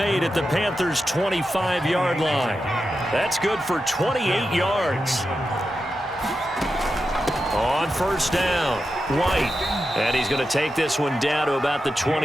at the Panthers' 25-yard line. That's good for 28 yards. On first down, White. And he's going to take this one down to about the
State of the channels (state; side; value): normal; both; correlation 0.89